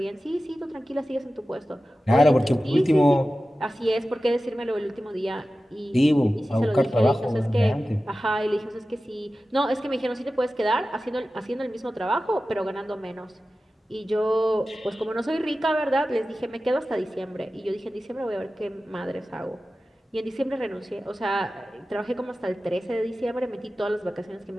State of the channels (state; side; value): normal; both; correlation 0.95